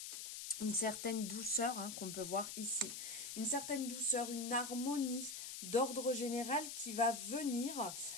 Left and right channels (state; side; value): noise; left; hiss, 7 dB below the sound